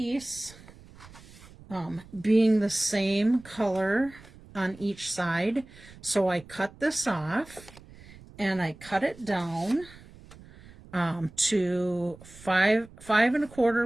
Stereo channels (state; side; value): noise; right; rumble, 21 dB below the sound